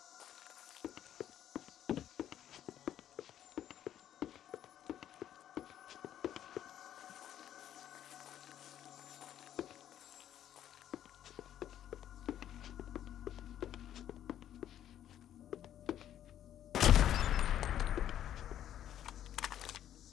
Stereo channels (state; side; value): quieter; right; 11.0 dB